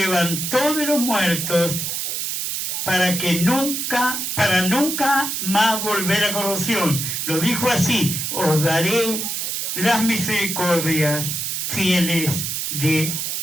de los muertos, para nunca más volver a corrupción. Lo dijo así: os daré las misericordias fieles de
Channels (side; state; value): right; noise; hiss, 2 dB below the sound